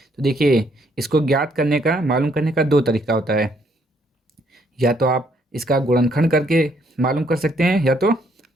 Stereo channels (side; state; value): both; normal; correlation 0.69